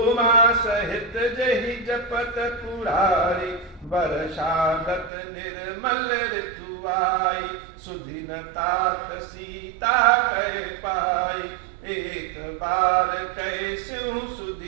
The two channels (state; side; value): drops out; left; at 5.1 s